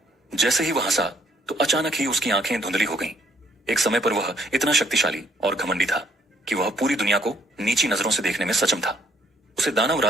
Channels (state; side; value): normal; both; correlation 0.67